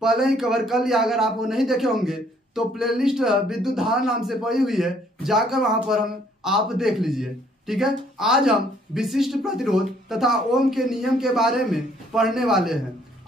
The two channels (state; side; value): normal; both; correlation 0.64